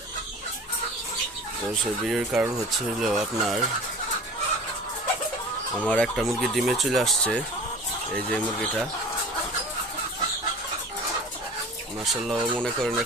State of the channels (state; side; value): normal; both; correlation 0.41